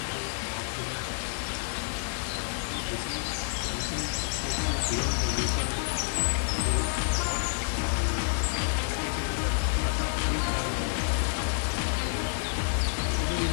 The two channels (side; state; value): right; silent; digital silence